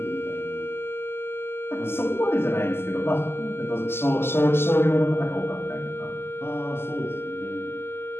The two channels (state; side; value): late; right; 0.12 ms